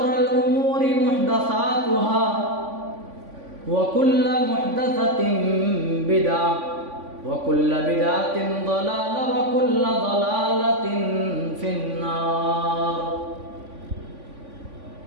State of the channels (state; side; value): late; left; 3.5 ms